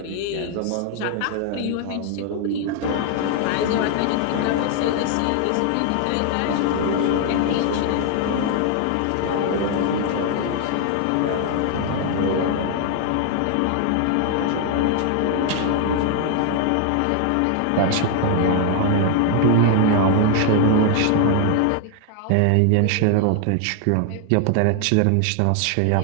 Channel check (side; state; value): both; different; correlation 0.00